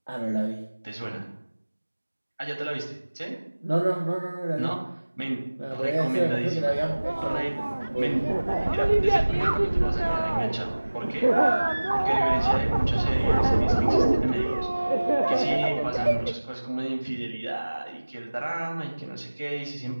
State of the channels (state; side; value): inverted; both; correlation -1.00